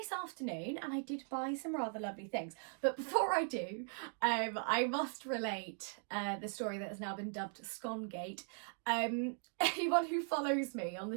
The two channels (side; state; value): left; silent; 52 dB below the other